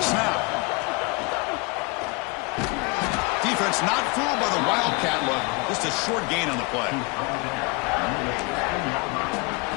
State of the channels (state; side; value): quieter; right; 29.0 dB